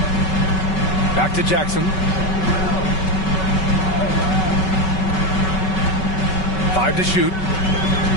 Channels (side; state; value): right; late; 5.3 ms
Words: Back to Jackson. 5 to shoot.